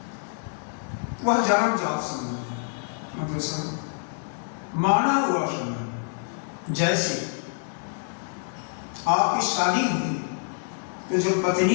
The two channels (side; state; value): right; silent; digital silence